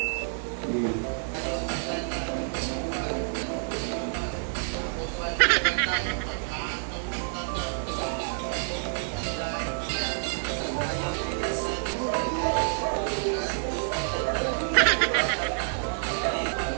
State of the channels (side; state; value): left; silent; digital silence